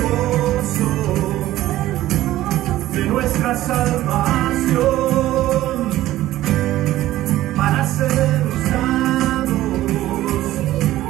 gozo de nuestra salvación, para ser usados,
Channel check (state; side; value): quieter; left; 14.9 dB